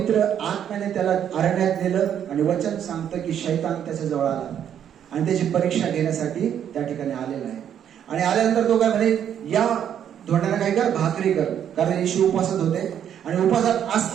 आत्म्याने त्याला अरण्यात नेलं आणि वचन सांगतं की शैतान त्याच्या जवळ आला आणि त्याची परीक्षा घेण्यासाठी त्या ठिकाणी आलेला आहे. आणि आल्यानंतर तो काय म्हणे, या धोंड्याला काय कर, भाकरी कर. कारण येशू उपवासात होते आणि उपवासात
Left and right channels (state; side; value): quieter; left; 9.4 dB